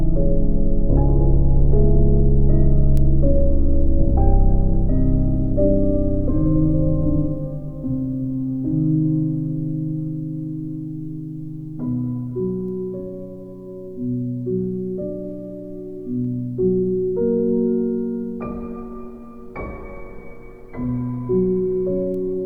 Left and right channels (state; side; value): identical; both; correlation 1.00